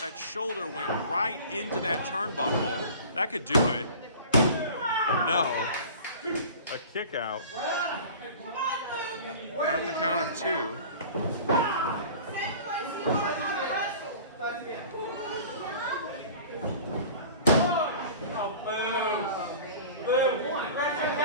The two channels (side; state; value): both; inverted; correlation -0.41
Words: that shoulder went right into that turnbuckle. That could do it. No. A kick out. At the count of 2.